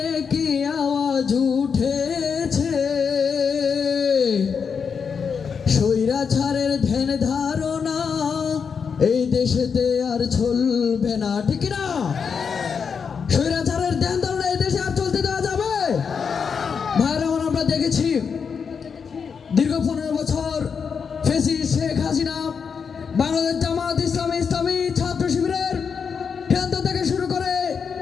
কি আওয়াজ উঠেছে। স্বৈরাচারের ধ্যান ধারণা এই দেশেতে আর চলবে না, ঠিক না? স্বৈরাচারের ধ্যান ধারণা এই দেশে আর চলতে দেওয়া যাবে? ভাইরা আমরা দেখেছি দীর্ঘ 15 বছর ফ্যাসিস্ট শেখ হাসিনা বাংলাদেশ জামাত ইসলামী ছাত্র শিবিরের কেন্দ্র থেকে শুরু করে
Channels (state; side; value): quieter; right; 6.2 dB